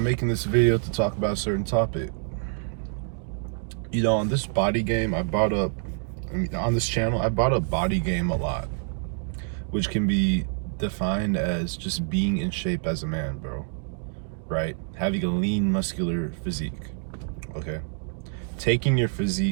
making this video to talk about a certain topic. You know, on this body game, on this channel, I brought up body game a lot, which can be defined as just being in shape as a man, bro. Right? Having a lean, muscular physique. Okay? Taking your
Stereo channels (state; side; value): silent; left; 60 dB below the other